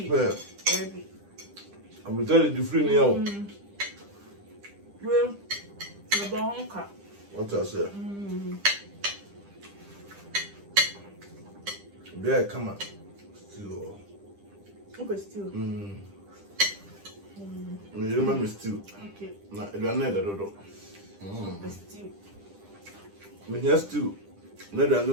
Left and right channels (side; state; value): left; late; 10 ms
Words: Yeah. I'm telling you, the free now. Well, the bonka. What I say? Yeah, come on. Still. Okay, still. You remember still? Okay. Na, you are not the dodo. Still. Me here still. No, there no